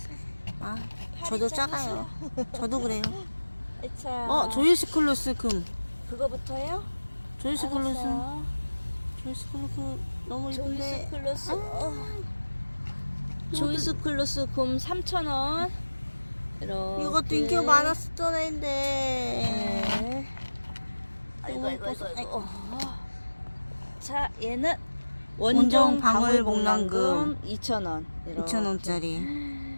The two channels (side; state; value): both; inverted; correlation -1.00